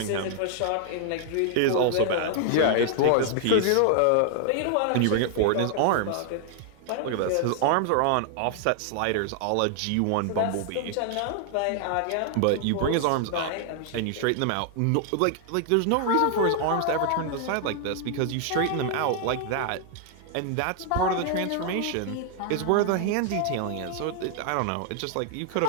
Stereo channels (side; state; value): both; different; correlation 0.00